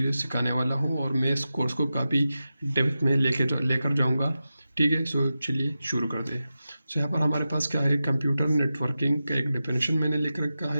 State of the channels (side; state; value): both; inverted; correlation -0.92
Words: सिखाने वाला हूँ और मैं इस कोर्स को काफ़ी डेप्थ में लेकर जाऊँगा, ठीक है। चलिए शुरू कर दें। यहाँ पर हमारे पास क्या है, कंप्यूटर नेटवर्किंग का एक डेफिनेशन मैंने लिख रखा